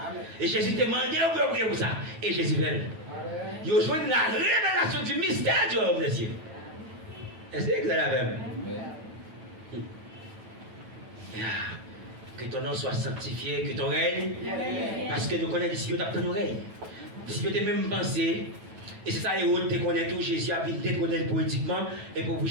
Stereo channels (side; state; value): left; late; 9.1 ms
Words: Et Jésus t'a demandé de prier pour ça. Et Jésus fait. Il a joué la révélation du mystère du royaume des cieux. Est-ce que vous avez la même? Que ton nom soit sanctifié, que ton règne. Parce que nous connaissons ici, nous avons ton règne. Si vous avez même pensé, et c'est ça, et tu connais tout, Jésus a vu détrôner politiquement, et pour